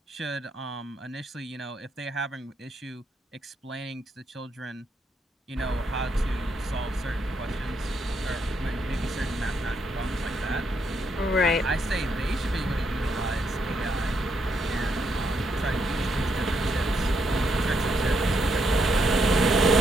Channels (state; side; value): normal; both; correlation 0.77